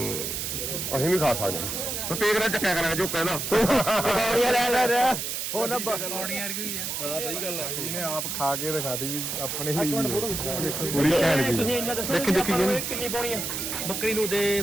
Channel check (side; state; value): right; noise; hiss, 3 dB below the sound